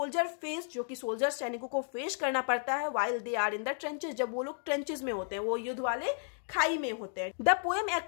फेस, जो कि सोल्जर सैनिकों को फेस करना पड़ता है while they are in the trenches, जब वो लोग ट्रेंचेस में होते हैं, वो युद्ध वाले खाई में होते हैं। The poem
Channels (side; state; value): right; silent; digital silence